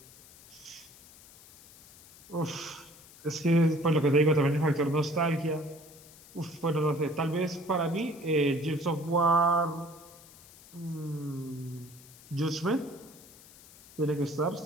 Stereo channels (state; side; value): noise; left; hiss, 22 dB below the sound